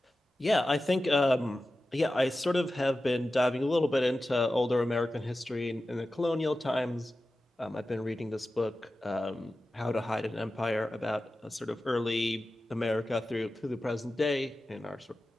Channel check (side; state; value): both; normal; correlation 0.94